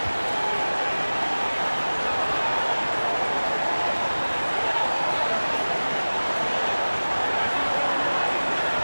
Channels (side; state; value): both; inverted; correlation -1.00